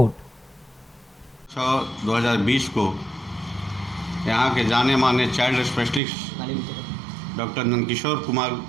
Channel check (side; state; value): left; drops out; at 6.0 s